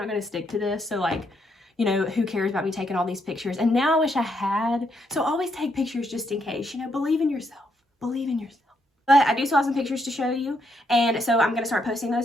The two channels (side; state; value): both; normal; correlation 0.76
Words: going to stick to this. So like, you know, who cares about me taking all these pictures? And now I wish I had. So always take pictures just in case, you know, believe in yourself. Believe in yourself. But I do still have some pictures to show you. And so I'm going to start posting